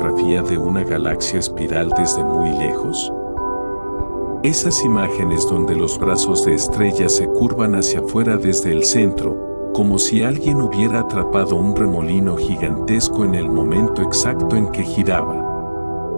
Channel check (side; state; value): both; inverted; correlation -1.00